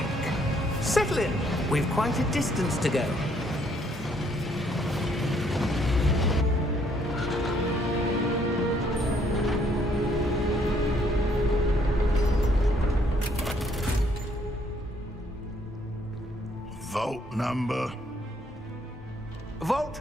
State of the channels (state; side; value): normal; both; correlation 0.67